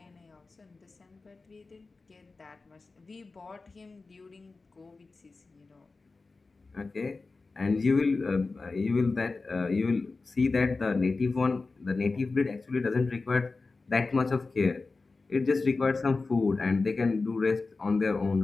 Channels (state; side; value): quieter; right; 3.8 dB